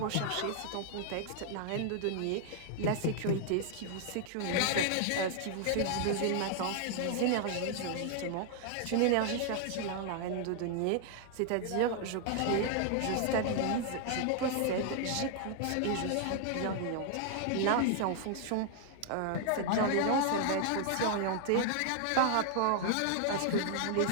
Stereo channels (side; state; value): both; different; correlation 0.00